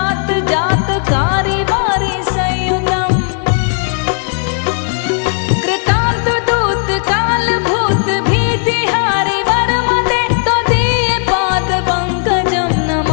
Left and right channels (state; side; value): silent; right; 55 dB below the other